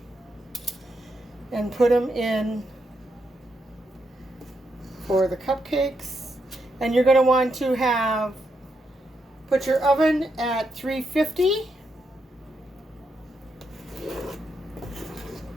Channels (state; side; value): normal; both; correlation 0.81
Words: And put them in for the cupcakes. And you're going to want to put your oven at 350.